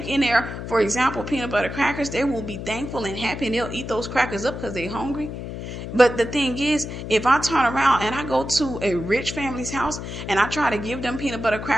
in there, for example, peanut butter crackers, they will be thankful and happy and they'll eat those crackers up because they're hungry. But the thing is, if I turn around and I go to a rich family's house and I try to give them peanut butter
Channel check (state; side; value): noise; left; hum, 8 dB below the sound